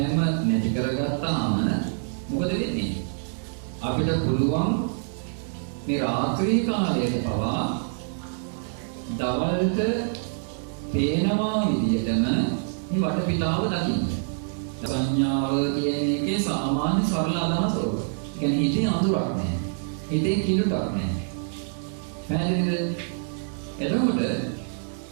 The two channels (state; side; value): silent; left; digital silence